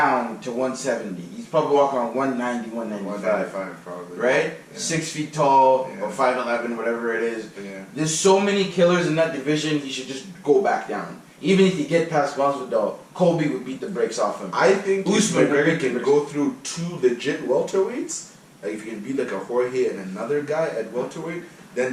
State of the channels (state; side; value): identical; both; correlation 1.00